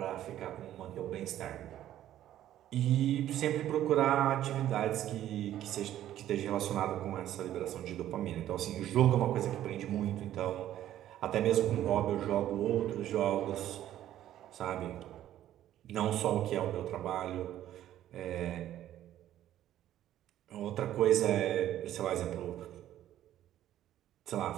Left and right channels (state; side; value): quieter; left; 12.4 dB